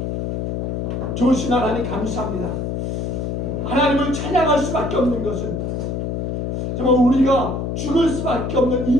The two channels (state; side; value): noise; left; hum, 2 dB below the sound